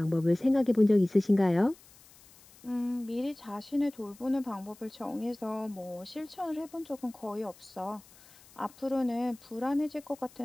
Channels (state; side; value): noise; left; hiss, 25 dB below the sound